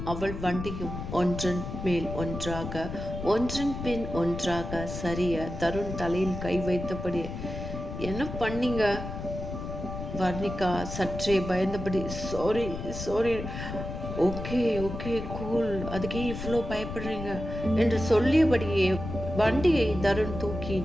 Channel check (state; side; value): noise; left; rumble, 7 dB below the sound